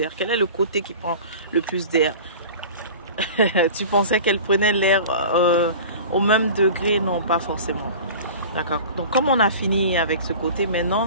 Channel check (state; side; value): inverted; both; correlation -0.38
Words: Quel est le côté qui prend le plus d'air? Tu pensais qu'elle prenait l'air au même degré? Non, pas forcément. D'accord. Donc, comme on a fini avec ce côté,